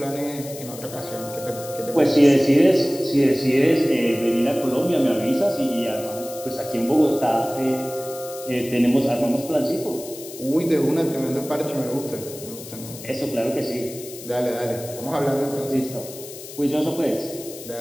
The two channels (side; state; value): left; noise; hiss, 14 dB below the sound